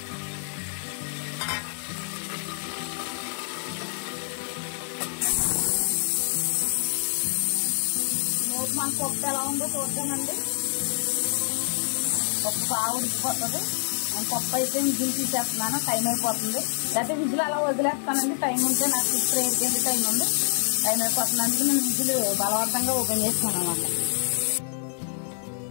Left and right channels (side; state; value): right; silent; 60 dB below the other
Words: మన పప్పు ఎలా ఉందో చూద్దామండి. పప్పు బాగా ఉడికిపోతుంది. నేను పప్పు అయితే విజిల్ తీసేస్తున్నాను, టైం అయిపోతుంది. లేకపోతే విజిల్ అలా వదిలేస్తానండి, టైం ఉంటే నాకు ఇప్పుడు ఏడికెళ్ళి టైం ఉంది, టైం అయిపోతుంది. అందుకే నేను విజిల్ బలవంతంగా ఓపెన్ చేస్తాను అన్నమాట.